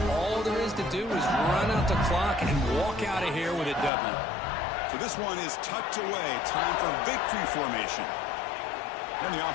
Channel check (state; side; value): drops out; right; at 3.9 s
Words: all there is to do is run out the clock and walk out of here with a W. So this one is tucked away. Time for victory formation. And the